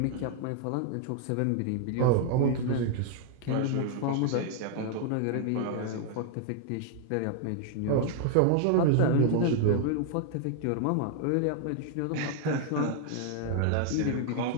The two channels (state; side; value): different; both; correlation 0.00